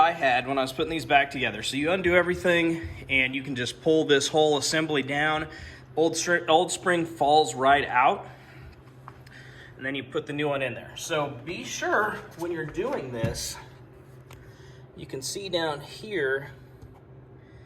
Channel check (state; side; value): identical; both; correlation 1.00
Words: had when I was putting these back together, so you undo everything and you can just pull this whole assembly down. Old spring falls right out, and then you put the new one in there. So be sure when you're doing this, you can see down here,